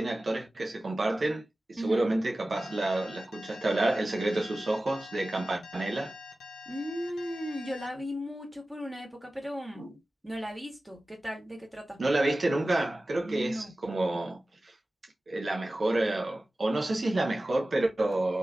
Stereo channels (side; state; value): both; normal; correlation 0.96